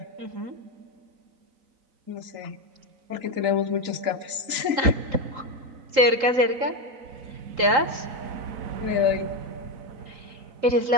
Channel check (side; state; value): left; late; 3.8 ms